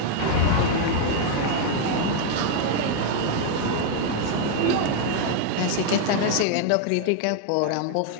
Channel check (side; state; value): both; different; correlation 0.00